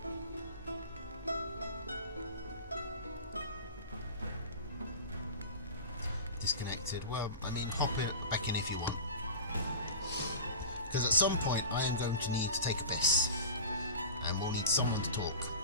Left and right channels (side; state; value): both; inverted; correlation -0.32